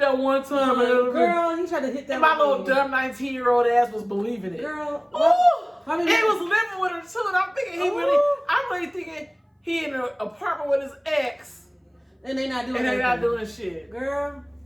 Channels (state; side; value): identical; both; correlation 1.00